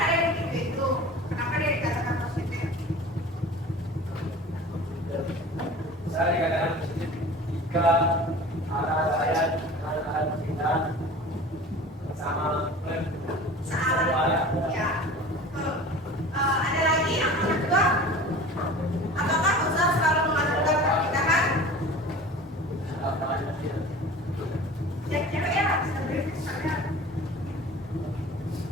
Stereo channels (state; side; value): normal; both; correlation 0.40